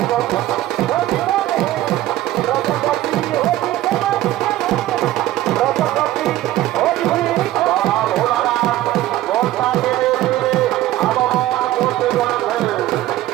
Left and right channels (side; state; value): left; quieter; 14.8 dB